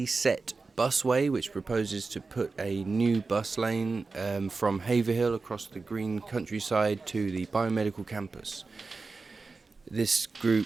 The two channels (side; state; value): left; quieter; 4.1 dB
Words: Busway, which proposes to put a new bus lane from Haverhill across the green countryside to the biomedical campus. This